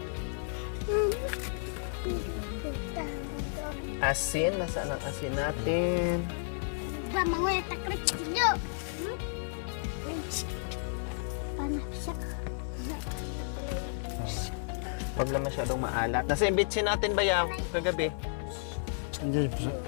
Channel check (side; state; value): right; silent; 56 dB below the other